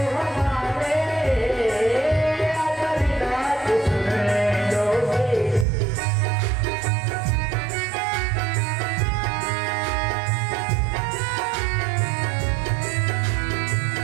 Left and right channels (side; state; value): left; drops out; at 5.7 s